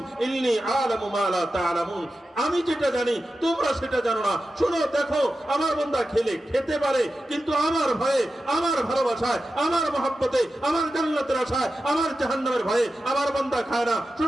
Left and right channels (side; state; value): both; normal; correlation 0.92